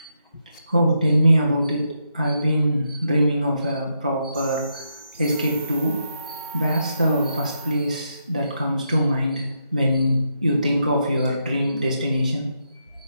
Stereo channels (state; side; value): inverted; both; correlation -0.81